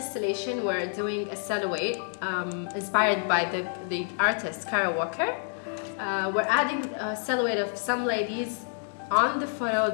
we're doing a silhouette inspired by the artist Kara Walker. We're adding a silhouette of some ladies on the photo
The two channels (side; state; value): right; silent; 59 dB below the other